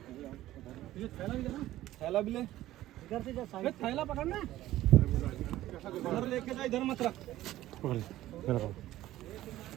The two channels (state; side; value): quieter; left; 14.8 dB